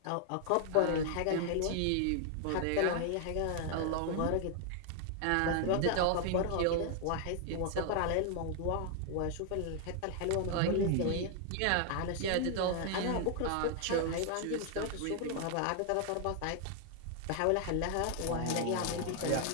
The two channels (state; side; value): different; both; correlation 0.00